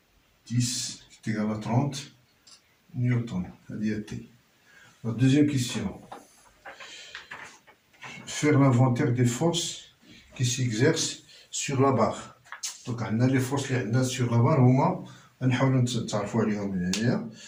10 تيغالا 30 نيوتن. هذه هي تي. La deuxième question. Faire l'inventaire des forces qui s'exercent sur la barre. Donc, on a les forces qui sont sur la barre. On va essayer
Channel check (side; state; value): both; identical; correlation 1.00